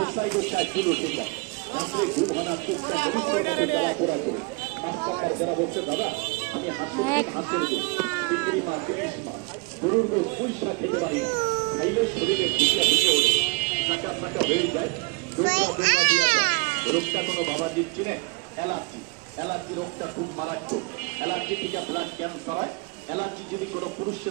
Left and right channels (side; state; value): left; quieter; 27.5 dB